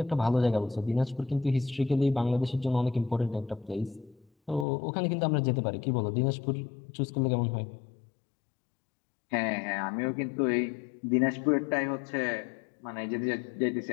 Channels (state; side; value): drops out; right; at 4.7 s